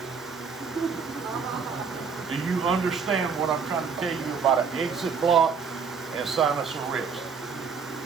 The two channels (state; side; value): quieter; left; 5.9 dB